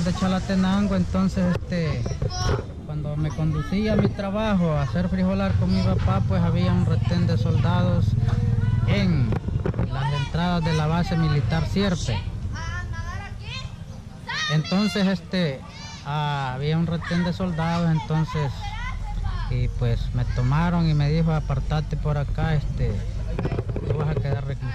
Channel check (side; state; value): both; identical; correlation 1.00